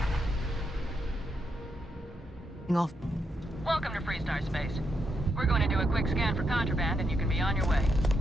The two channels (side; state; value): both; normal; correlation 0.80